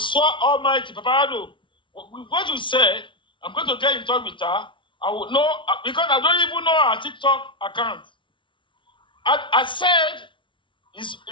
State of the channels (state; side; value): late; right; 0.24 ms